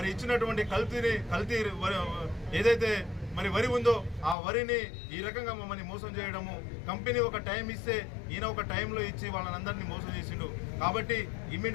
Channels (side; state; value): right; drops out; at 4.4 s